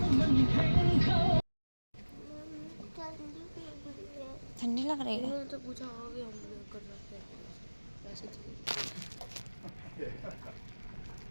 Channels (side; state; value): both; inverted; correlation -1.00